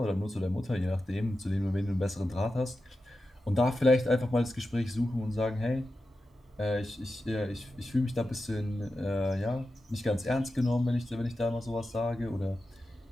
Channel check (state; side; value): normal; both; correlation 0.92